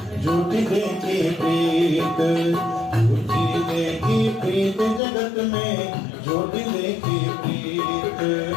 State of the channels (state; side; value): drops out; right; at 5.0 s